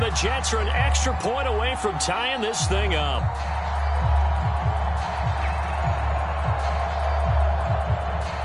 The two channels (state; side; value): identical; both; correlation 1.00